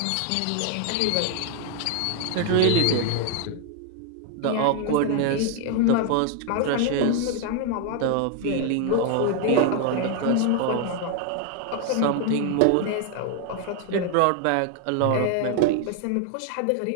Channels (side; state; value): both; different; correlation 0.01